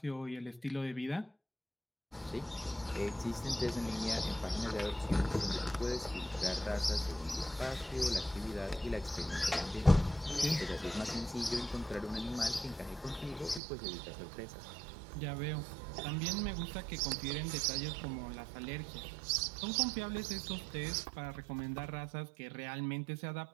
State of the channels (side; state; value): left; drops out; at 13.6 s